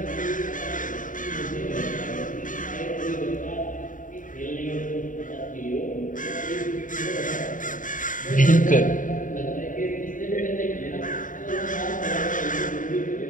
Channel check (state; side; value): late; right; 0.38 ms